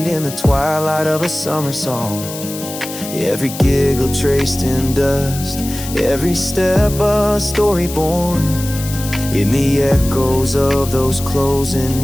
in the twilight of a summer song. Every giggle traced in dust, every step a story born. In the echoes of those closing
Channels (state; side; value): noise; left; hiss, 11 dB below the sound